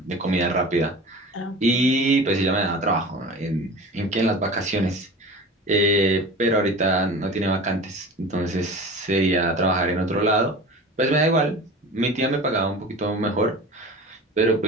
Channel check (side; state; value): both; normal; correlation 0.36